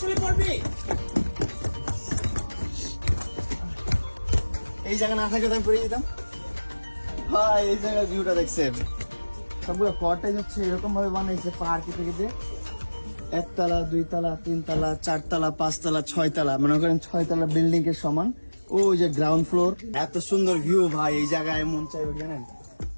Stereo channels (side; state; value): both; inverted; correlation -1.00